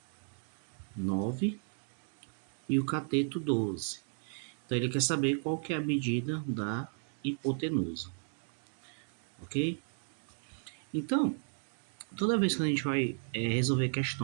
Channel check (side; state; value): left; silent; 55 dB below the other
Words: 9 e o cateto 12. Então ele quer saber qual que é a medida da hipotenusa, ok? Então, toda vez que a gente vai resolver